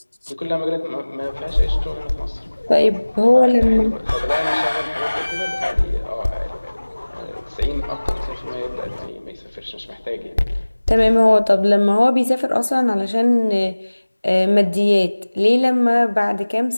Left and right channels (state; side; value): inverted; both; correlation -1.00